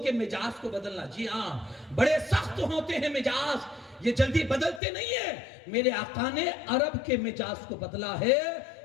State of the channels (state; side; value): drops out; right; at 4.8 s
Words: مزاج کو بدلنا، جی ہاں بڑے سخت ہوتے ہیں مزاج، یہ جلدی بدلتے نہیں ہیں۔ میرے آقا نے عرب کے مزاج کو بدلا ہے،